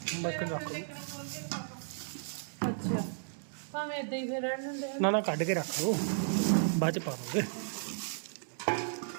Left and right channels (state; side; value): silent; left; digital silence